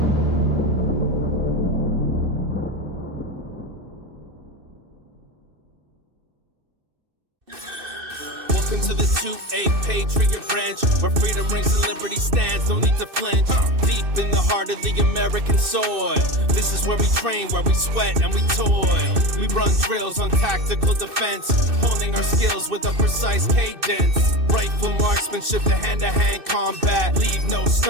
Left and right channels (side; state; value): left; late; 2.6 ms